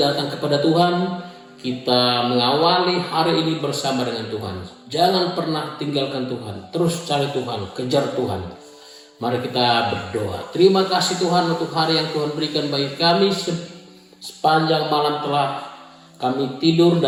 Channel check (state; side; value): identical; both; correlation 1.00